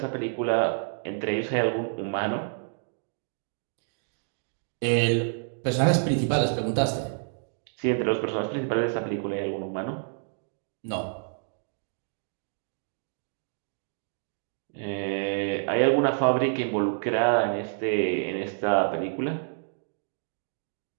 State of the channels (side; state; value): left; silent; digital silence